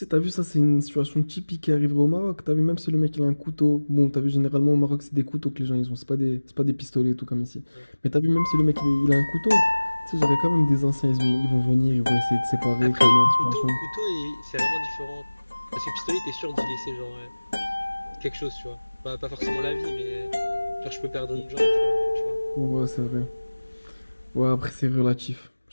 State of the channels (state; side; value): inverted; both; correlation -1.00